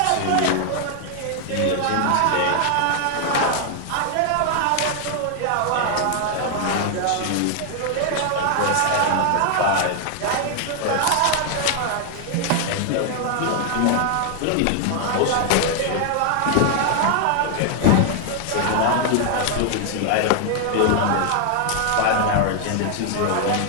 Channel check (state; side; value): different; both; correlation 0.00